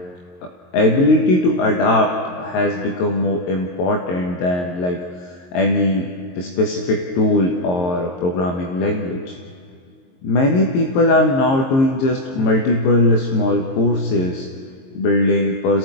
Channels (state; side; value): late; right; 22 ms